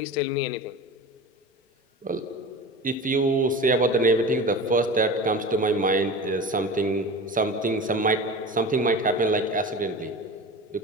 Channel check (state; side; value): normal; both; correlation 0.32